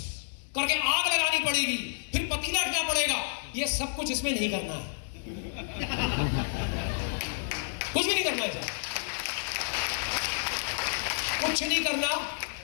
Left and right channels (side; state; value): right; silent; digital silence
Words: करके आग लगानी पड़ेगी, फिर पतीला रखना पड़ेगा। ये सब कुछ इसमें नहीं करना है, कुछ भी नहीं करना है, कुछ नहीं करना।